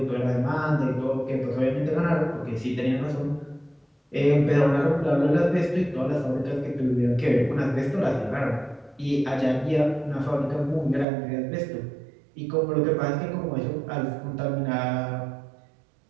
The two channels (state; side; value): drops out; left; at 11.1 s